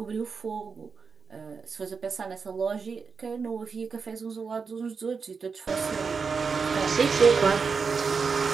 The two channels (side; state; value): left; quieter; 5.3 dB